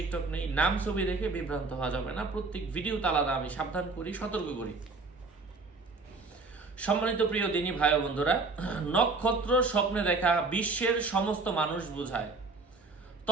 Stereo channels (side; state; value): left; quieter; 3.8 dB